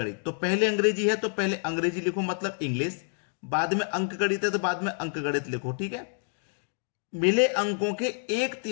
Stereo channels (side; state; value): right; silent; 56 dB below the other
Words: तो पहले अंग्रेजी है तो पहले अंग्रेजी लिखो, मतलब इंग्लिश। बाद में अंकगणित है तो बाद में अंकगणित लिखो, ठीक है। मिले अंकों के